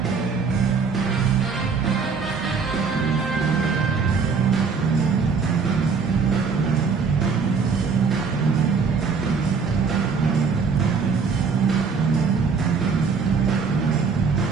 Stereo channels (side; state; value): left; quieter; 5.3 dB